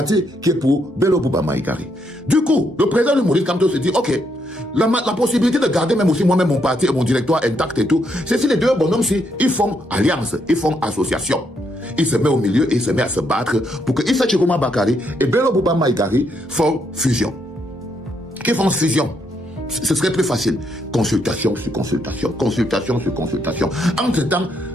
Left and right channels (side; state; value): both; normal; correlation 0.76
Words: qui est pour Bello Bouba Maïgari. Du coup, le président de Maurice Kamto se dit, ok, la possibilité de garder même aussi moi-même mon parti et mon directoire intact et tout, c'est si les deux bonhommes-ci, ils font alliance, ils font association. Il se met au milieu et il se met à se battre pour que Issa Chiruma Bakari et Bello Bouba Maïgari font fusion. Qu'ils font fusion. Ce serait plus facile. Consultation sur consultation, consultation sur consultation. Entre-temps,